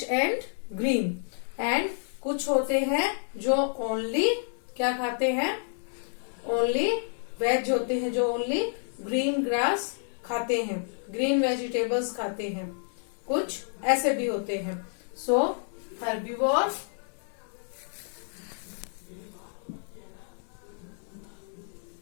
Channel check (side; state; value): right; silent; 58 dB below the other